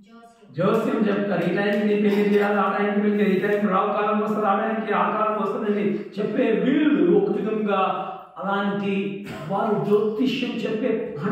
జోస్యం చెప్తారు, ఈ టైంకి నీ పెళ్లి చేయాలి, ఆ టైంకి పెళ్లి, ఈ టైంకి రావు కాలం వస్తుంది, ఆ టైంకి ఆ కాలం వస్తుందని చెప్పే వీళ్ళు ఒక విధంగా అలాంటి వారు జ్యోతిష్యం చెప్పే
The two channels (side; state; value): both; identical; correlation 1.00